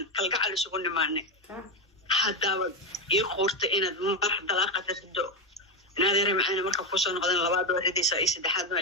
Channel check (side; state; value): both; normal; correlation 0.10